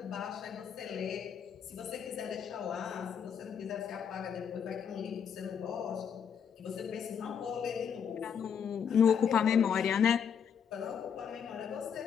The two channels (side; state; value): right; quieter; 7.5 dB